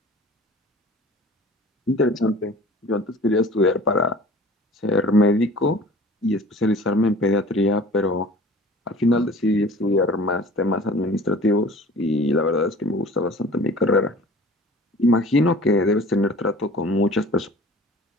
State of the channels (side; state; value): both; normal; correlation 0.45